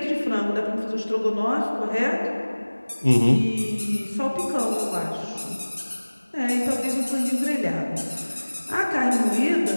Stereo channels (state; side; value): inverted; both; correlation -1.00